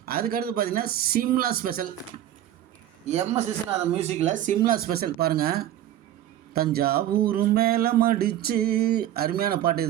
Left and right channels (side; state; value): left; quieter; 12.2 dB